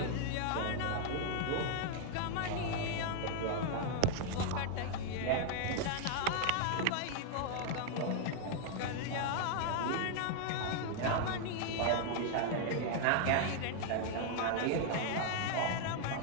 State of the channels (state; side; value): different; both; correlation 0.00